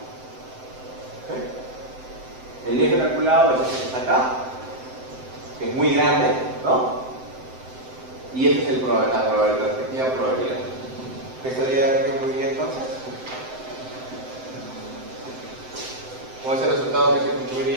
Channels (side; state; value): left; late; 7.8 ms